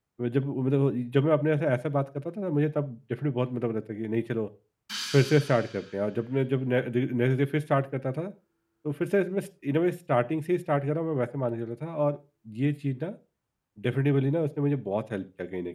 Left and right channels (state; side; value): identical; both; correlation 1.00